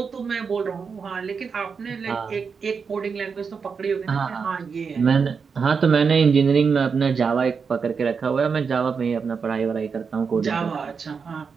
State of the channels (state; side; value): quieter; left; 5.7 dB